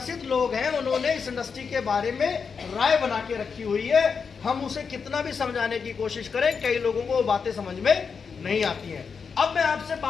लोग हैं, उन्होंने इस इंडस्ट्री के बारे में राय बना के रखी हुई है। हम उसे कितना भी समझाने की कोशिश करें, कई लोगों को वो बातें समझ में नहीं आती हैं। अब मैं आपसे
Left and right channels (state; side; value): quieter; right; 5.8 dB